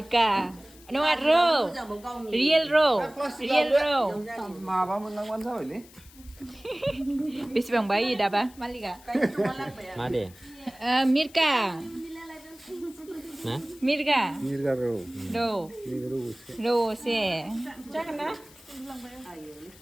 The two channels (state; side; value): noise; left; hiss, 23 dB below the sound